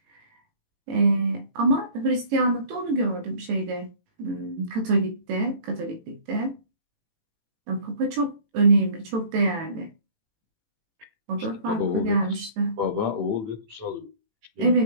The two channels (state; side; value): late; left; 18 ms